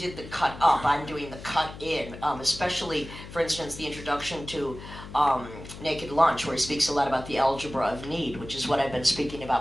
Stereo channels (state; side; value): noise; left; hum, 13 dB below the sound